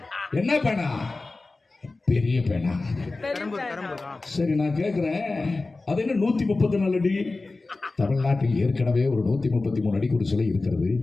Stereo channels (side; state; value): right; quieter; 3.4 dB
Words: என்ன பேனா? பெரிய பேனா. சரி, நான் கேட்கிறேன், அது என்ன 134 அடி? தமிழ்நாட்டில் ஏற்கனவே ஒரு 133 அடிக்கு ஒரு சிலை இருக்கிறது.